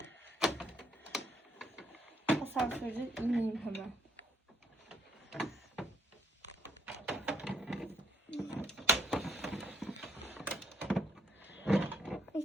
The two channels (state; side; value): normal; both; correlation 0.68